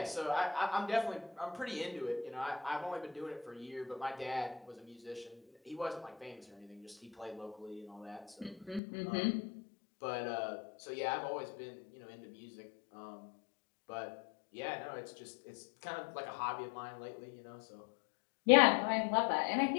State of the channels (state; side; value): drops out; right; at 8.8 s